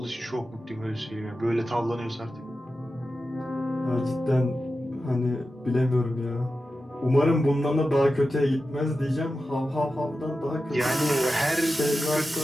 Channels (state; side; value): normal; both; correlation 0.92